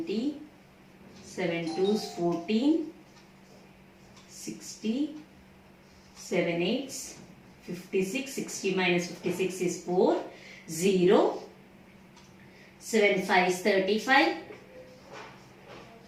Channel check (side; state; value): both; identical; correlation 1.00